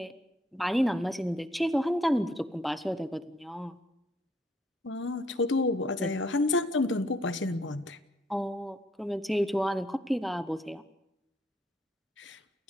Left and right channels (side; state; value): both; normal; correlation 0.69